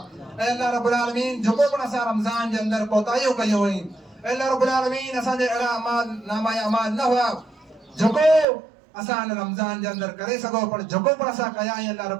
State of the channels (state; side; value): drops out; left; at 8.5 s